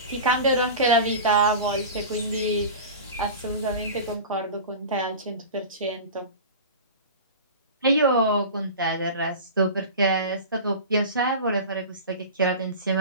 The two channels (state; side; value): inverted; both; correlation -0.32